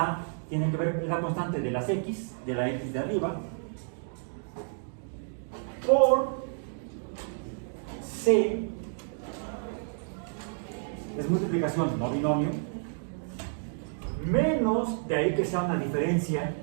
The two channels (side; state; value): left; silent; digital silence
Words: tiene que ver con la constante de las X, de la X de arriba, por C, es multiplicación, no binomio, menos, de ahí que sea una diferencia,